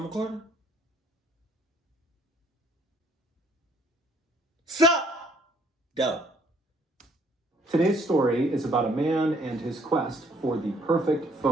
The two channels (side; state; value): both; normal; correlation 0.62